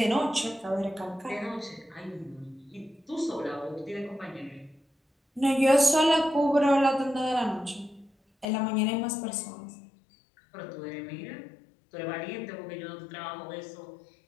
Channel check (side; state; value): right; drops out; at 8.5 s